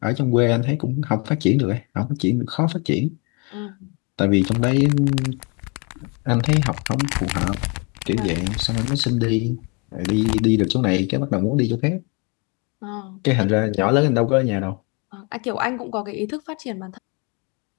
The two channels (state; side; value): quieter; right; 31.9 dB